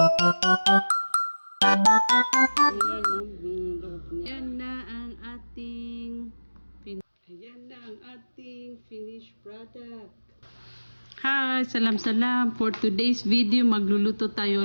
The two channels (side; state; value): both; inverted; correlation -1.00